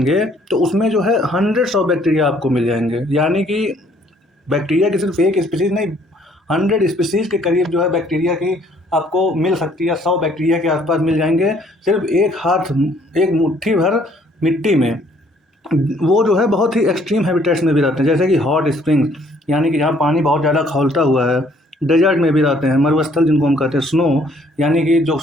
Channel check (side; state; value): both; normal; correlation 0.62